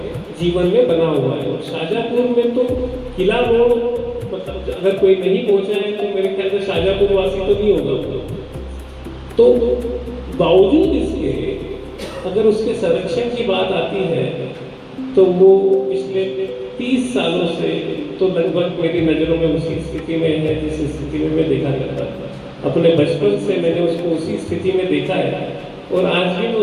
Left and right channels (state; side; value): identical; both; correlation 1.00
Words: जीवन में बना हुआ है। और शाहजहांपुर में तो किला रोड, मतलब अगर कोई नहीं पहुंचा है तो मेरे ख्याल से शाहजहांपुर वासी तो नहीं होगा। तो बावजूद इसके अगर उसके संरक्षण की बात आती है तो वो पिछले 30 सालों से तो लगभग मेरी नज़रों में उसी स्थिति में है जिस स्थिति में मैं देखा करता था। अपने बचपन से मैंने उसको उसी स्थिति में देखा है और आज भी मैं